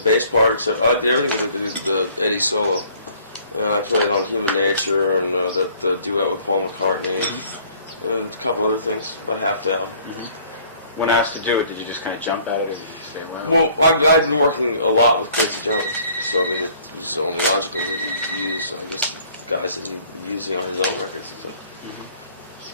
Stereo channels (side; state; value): both; inverted; correlation -0.57